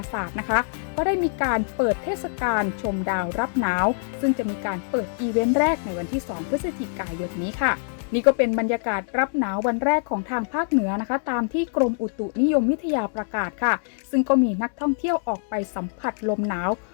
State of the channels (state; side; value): silent; right; digital silence